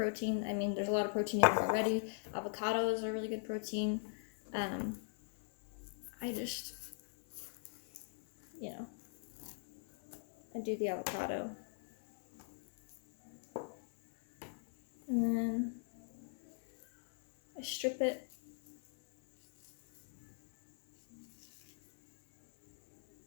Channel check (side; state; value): right; silent; 52 dB below the other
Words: I mean, there's a lot of protein in there already. Avocados are really good protein. I just, I do the avocado. And then I strip it.